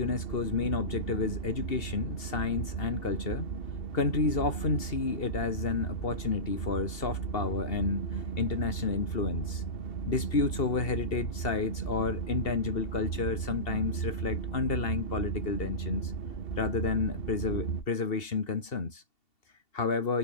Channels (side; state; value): right; late; 2.7 ms